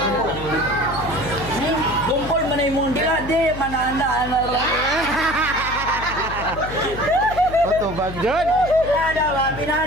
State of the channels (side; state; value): left; noise; hum, 10 dB below the sound